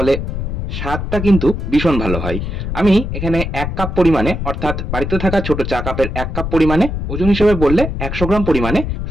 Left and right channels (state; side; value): noise; left; rumble, 4 dB below the sound